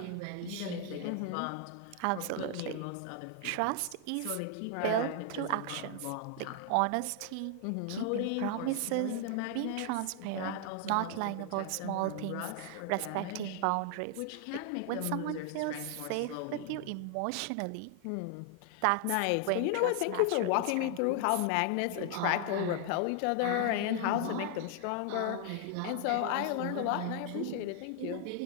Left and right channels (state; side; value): different; both; correlation 0.00